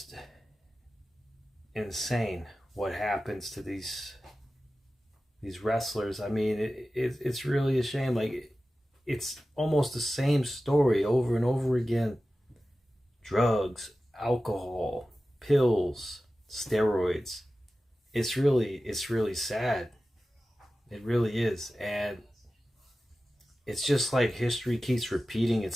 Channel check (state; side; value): normal; both; correlation 0.95